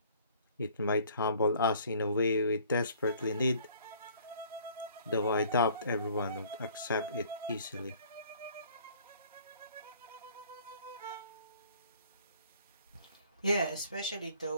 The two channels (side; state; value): both; inverted; correlation -0.56